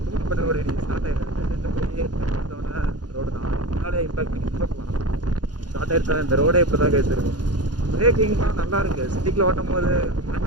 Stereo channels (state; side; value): late; left; 0.69 ms